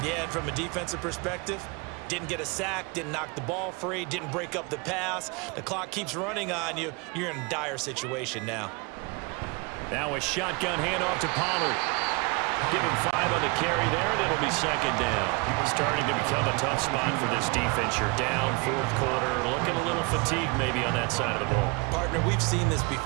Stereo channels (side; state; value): left; quieter; 28.8 dB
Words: Yeah, and from a defensive perspective, didn't get a sack, didn't knock the ball free, didn't break up the pass. The clock keeps running on you. You're in a dire situation now. Now a shotgun handoff to Pollard. Give him 5 on the carry there, and it'll be second down. Starting to become a tough spot for this defense. You're down fourth quarter, looking a little fatigued maybe on that side of the ball. Partner, we've seen this